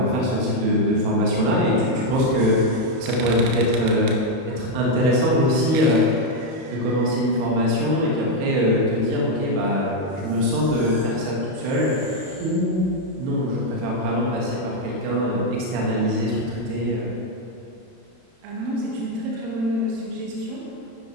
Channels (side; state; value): left; late; 31 ms